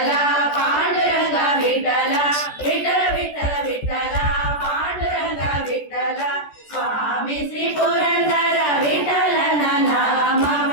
ಪಾಂಡುರಂಗ ವಿಠಲ ವಿಠಲ ವಿಠಲ ವಿಠಲ ಪಾಂಡುರಂಗ ವಿಠಲ ಸ್ವಾಮಿ ಶ್ರೀ ಪುರಂದರ ವಿಠಲನ ನಾಮವ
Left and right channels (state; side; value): late; right; 14 ms